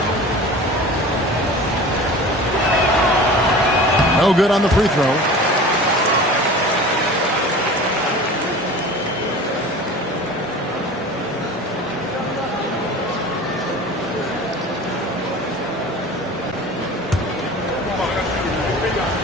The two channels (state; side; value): normal; both; correlation 0.38